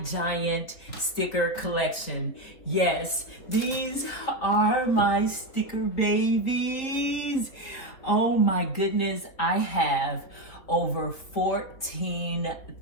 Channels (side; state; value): right; late; 3.5 ms